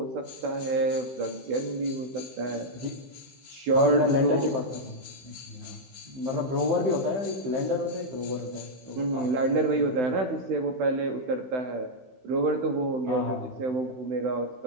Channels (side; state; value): left; late; 16 ms